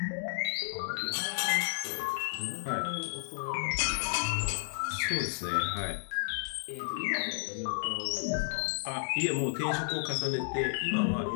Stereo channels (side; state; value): right; silent; digital silence